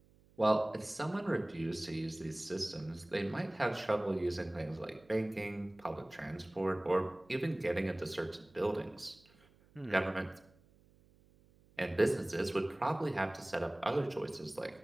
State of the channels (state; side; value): noise; right; hum, 29 dB below the sound